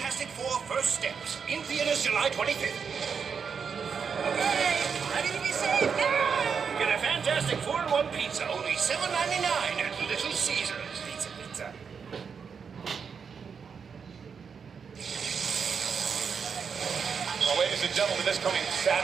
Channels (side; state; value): left; quieter; 6.2 dB